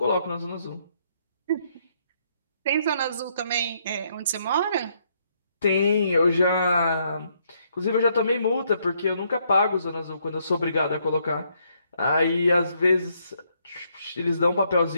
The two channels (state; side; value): inverted; both; correlation -0.72